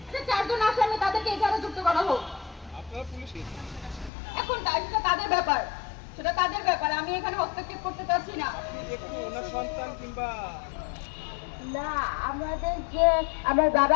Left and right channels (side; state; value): right; drops out; at 4.1 s